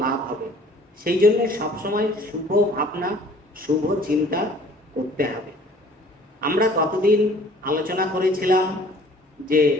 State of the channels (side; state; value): both; normal; correlation 0.52